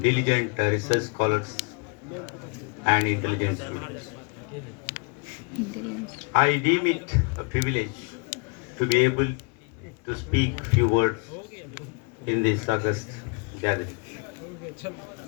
diligent research scholars, and intelligent students. I deem it a privilege to be able to speak few words in this august gathering.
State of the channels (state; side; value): quieter; right; 34.8 dB